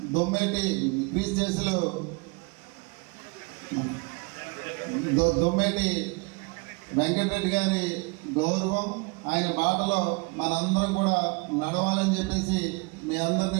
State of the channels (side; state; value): left; quieter; 29.6 dB